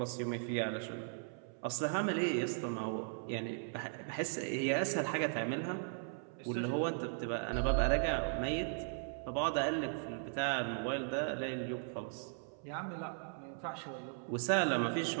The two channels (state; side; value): silent; left; 53 dB below the other